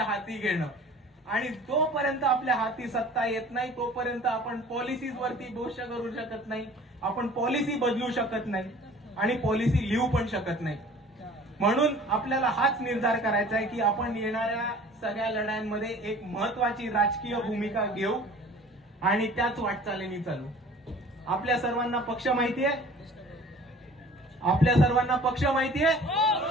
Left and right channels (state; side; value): normal; both; correlation 0.47